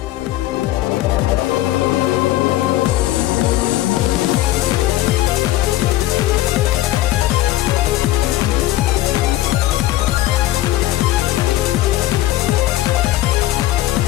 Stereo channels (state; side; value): quieter; right; 15.6 dB